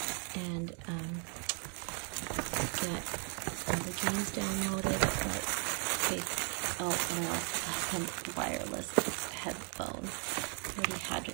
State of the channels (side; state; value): left; quieter; 39.9 dB